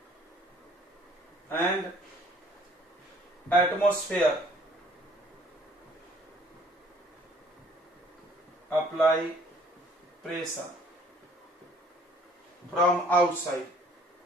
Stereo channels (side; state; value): both; normal; correlation 0.57